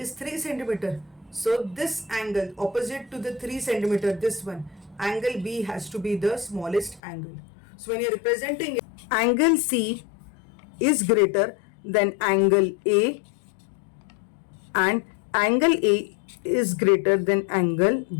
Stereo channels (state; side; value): drops out; right; at 7.0 s